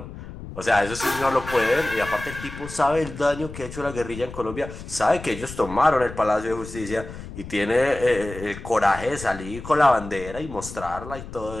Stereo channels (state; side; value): noise; left; rumble, 12 dB below the sound